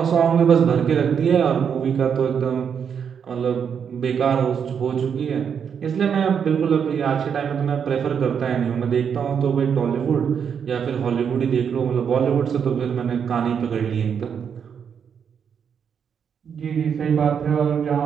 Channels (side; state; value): left; quieter; 7.3 dB